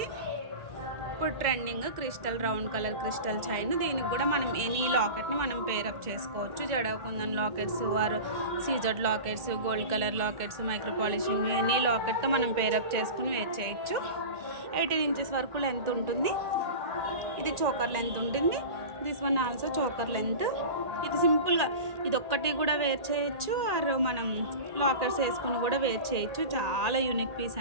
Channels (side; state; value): left; late; 1.8 ms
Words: ఇప్పుడు trending crystal round colour crystal chain. దీనికి కూడా మనం ఎనీ లాకెట్ని మనం పేరప్ చేసుకోవచ్చు. జడకుందన్ lockets or CZ lockets, gold colour lockets, micro polishing any లాకెట్తో మనం పేరప్ చేసుకుని వేర్ చేయొచ్చు. 18 ఇంచెస్ వరకు లెంత్ ఉంటుంది. ఇది చోకర్ లెంత్ ఉంటుంది. This one also choker length. ఇది సింపుల్గా ఇది ఒక్కటి కూడా వేర్ చేయొచ్చు ఆర్ మనం లాకెట్స్ వేసుకుని కూడా వేర్ చేయొచ్చు. చాలా యూనిక్ పీస్